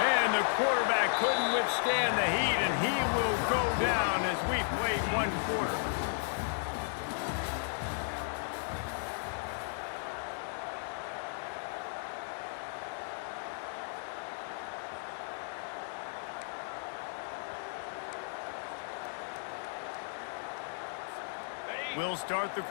the quarterback couldn't withstand the heat, and he will go down as we play 1 quarter. We'll start the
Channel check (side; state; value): right; silent; digital silence